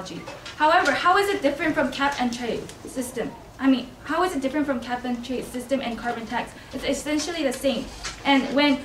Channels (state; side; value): identical; both; correlation 1.00